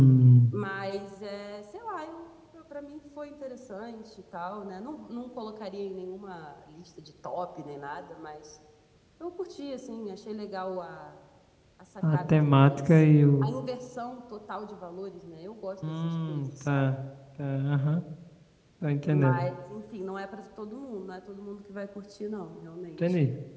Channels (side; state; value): both; identical; correlation 1.00